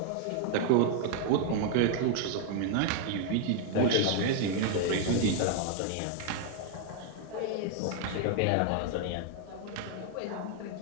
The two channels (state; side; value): different; both; correlation 0.00